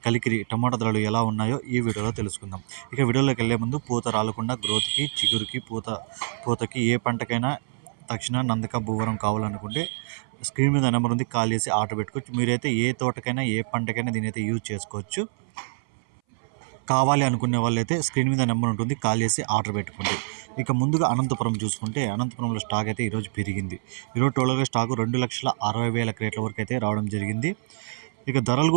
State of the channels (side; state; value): left; silent; 59 dB below the other